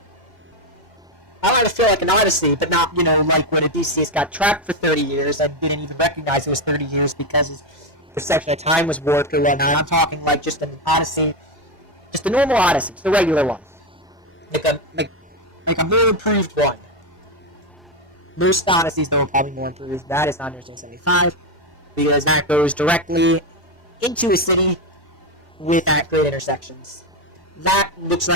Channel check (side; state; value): both; normal; correlation 0.09